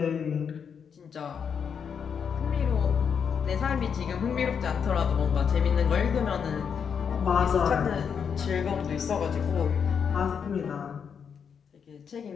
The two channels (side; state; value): right; quieter; 7.0 dB